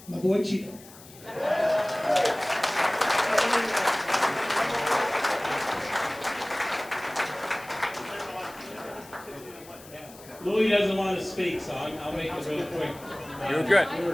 my boy Chico. Louis doesn't want to speak, so I'll make it real quick. You're good. We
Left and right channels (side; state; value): left; noise; hiss, 20 dB below the sound